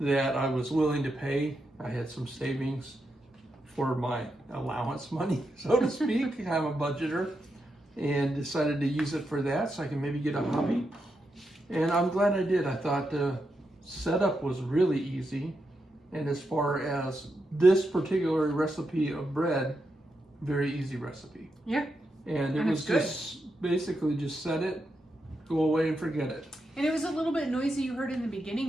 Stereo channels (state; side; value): normal; both; correlation 0.85